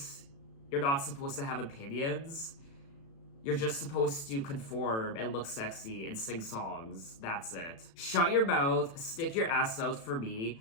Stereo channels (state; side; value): late; right; 36 ms